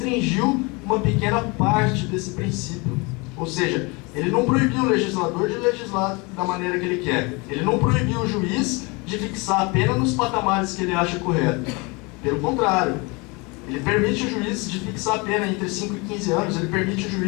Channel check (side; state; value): right; quieter; 27.8 dB